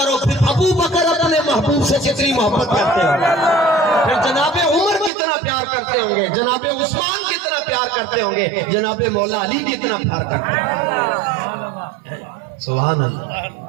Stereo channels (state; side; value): drops out; left; at 5.1 s